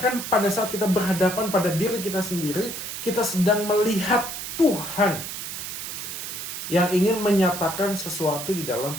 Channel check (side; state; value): right; noise; hiss, 7 dB below the sound